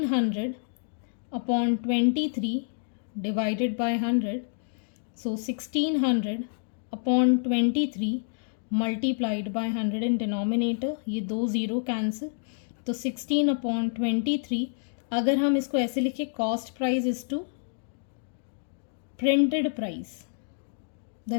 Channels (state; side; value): silent; right; digital silence